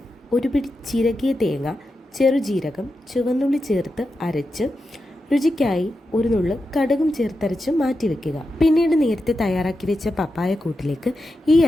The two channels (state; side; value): normal; both; correlation 0.89